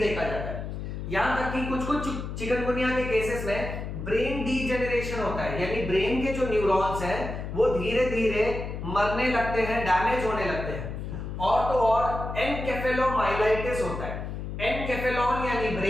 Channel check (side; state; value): left; noise; hum, 6 dB below the sound